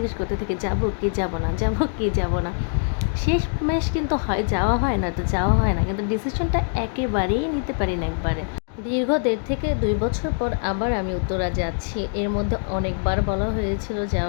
করতে থাকি, যাবো কি যাব না, যাবো কি যাব না। শেষমেশ কিন্তু হয় যাওয়া হয় না, তো যাওয়া হয় না, কিন্তু ডিসিশনটা একেবারেই নিতে পারি না একবারে। দীর্ঘ ১.৫ থেকে ২ বছর পর আবার আমি উত্তরা যাচ্ছি। এর মধ্যে অনেকবার বলা হয়েছিল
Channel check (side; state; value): right; silent; 63 dB below the other